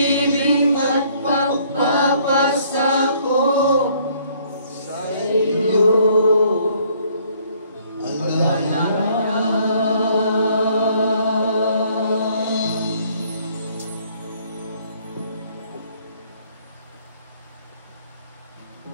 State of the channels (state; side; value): inverted; both; correlation -0.62